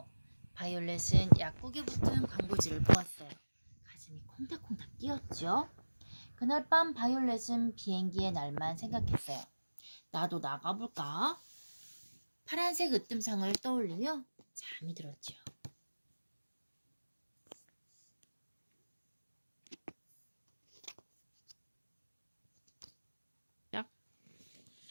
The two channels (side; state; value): both; inverted; correlation -1.00